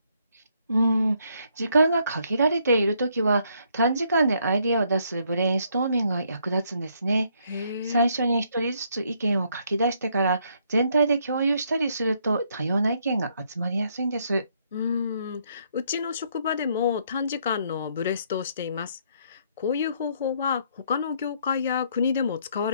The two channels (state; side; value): inverted; both; correlation -0.70